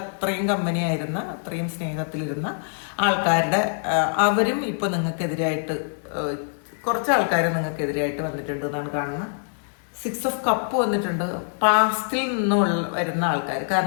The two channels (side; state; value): right; silent; digital silence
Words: കമ്പനി ആയിരുന്ന, അത്രയും സ്നേഹത്തിലിരുന്ന ആൾക്കാരുടെ അവരും ഇപ്പോൾ നിങ്ങൾക്കെതിരായിട്ട് കുറച്ച് ആൾക്കാർ നിങ്ങൾക്കെതിരായിട്ട് വന്നിട്ടുണ്ട് എന്നാണ് കാണുന്നത്. 6 ഓഫ് കപ്പ് വന്നിട്ടുണ്ട്. പാസ്റ്റിൽ നിന്നുള്ള വരുന്ന ആൾക്കാർ,